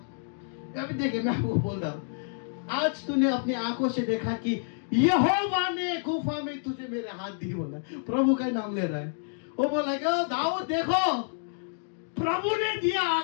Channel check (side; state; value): right; silent; digital silence